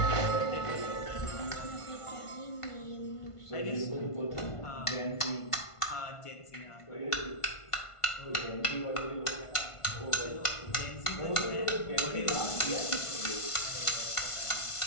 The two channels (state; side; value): late; right; 1.5 ms